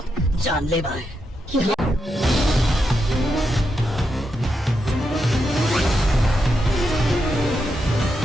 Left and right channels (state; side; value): normal; both; correlation 0.84